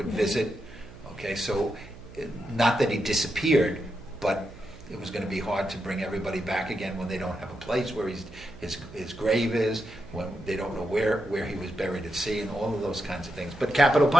visit. Okay, so not that he disappeared, but it was going to be hard to bring everybody back again when they don't have a place where his grave is, when they don't know where he was buried at sea, and all of those kinds of things. But capital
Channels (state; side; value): noise; right; hum, 18 dB below the sound